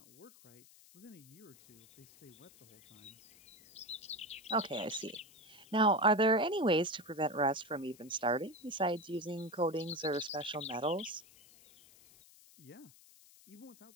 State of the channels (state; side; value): noise; left; hiss, 24 dB below the sound